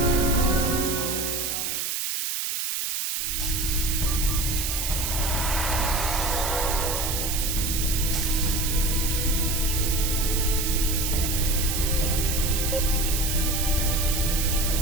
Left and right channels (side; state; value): right; noise; hiss, 1 dB below the sound